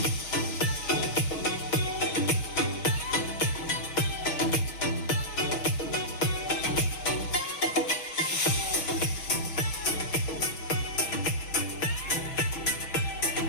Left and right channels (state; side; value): late; right; 6.4 ms